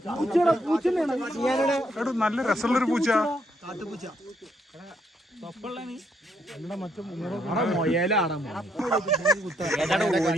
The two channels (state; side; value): normal; both; correlation 0.74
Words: നല്ല രസമുള്ളൊരു പൂച്ച.